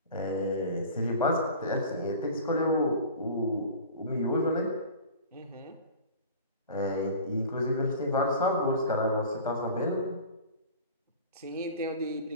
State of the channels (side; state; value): both; inverted; correlation -0.39